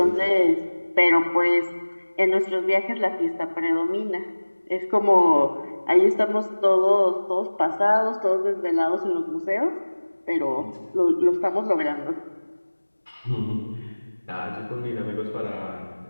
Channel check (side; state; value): both; inverted; correlation -1.00